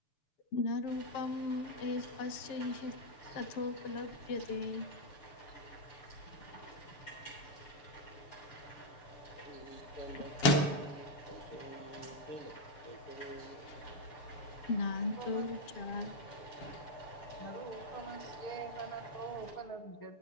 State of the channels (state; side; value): late; right; 7.0 ms